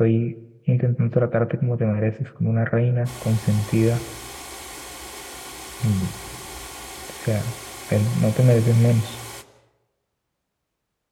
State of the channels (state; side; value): identical; both; correlation 1.00